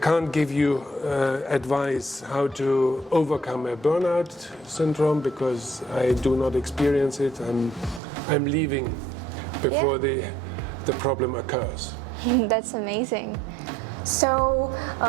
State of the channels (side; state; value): left; drops out; at 8.0 s